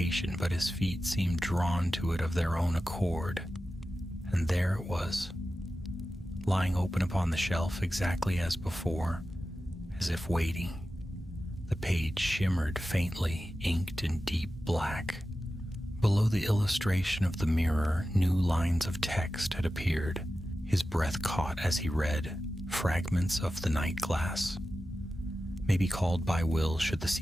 but his feet seemed drawn to it of their own accord. And there it was, lying open upon the shelf exactly as before, as if waiting. The page shimmered faintly, inked in deep black. Below the illustration of the mirror, new lines of text had appeared. His breath caught as he read, fragments of the night glass. May be called by will should the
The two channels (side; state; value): both; normal; correlation 0.93